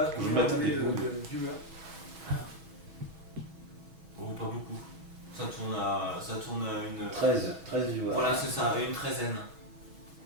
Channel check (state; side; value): late; left; 6.2 ms